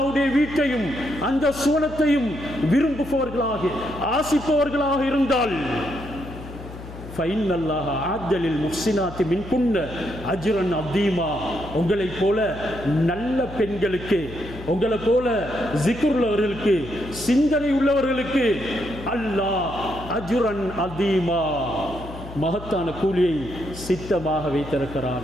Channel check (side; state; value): left; noise; hum, 13 dB below the sound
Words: வீட்டையும் அந்த சுவனத்தையும் விரும்புபவர்களாக ஆசிப்பவர்களாக இருந்தால் உங்களை போல நல்ல பெண்களுக்கு, உங்களை போல ஜிக்ர் உள்ளவர்களுக்கு, சிந்தனை உள்ளவர்களுக்கு அல்லாஹ் அஜ்ரன் அதீமா, மகத்தான கூலியை சித்தமாக